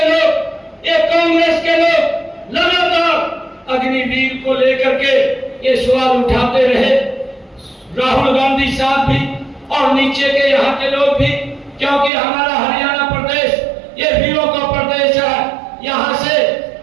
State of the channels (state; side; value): drops out; left; at 12.1 s